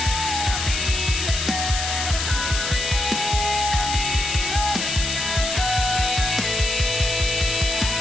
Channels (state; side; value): noise; left; hiss, 3 dB below the sound